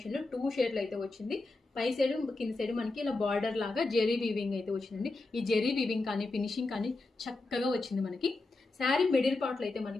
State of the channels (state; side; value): quieter; right; 3.2 dB